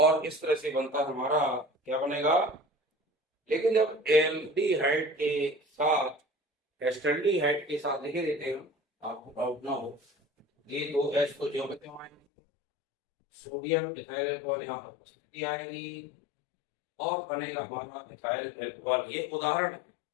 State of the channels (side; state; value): right; drops out; at 12.2 s